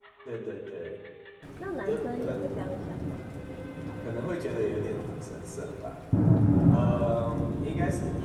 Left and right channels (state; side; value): identical; both; correlation 1.00